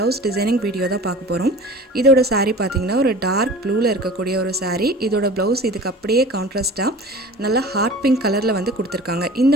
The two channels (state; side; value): normal; both; correlation 0.40